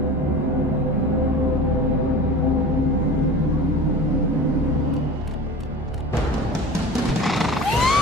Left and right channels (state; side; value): normal; both; correlation 0.36